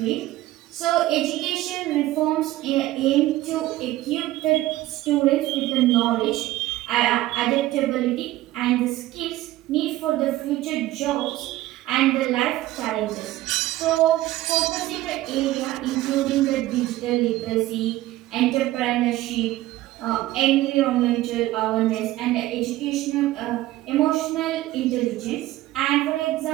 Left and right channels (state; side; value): quieter; left; 16.2 dB